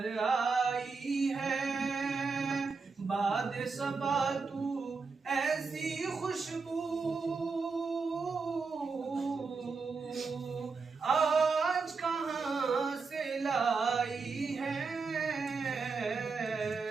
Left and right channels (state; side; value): quieter; left; 4.6 dB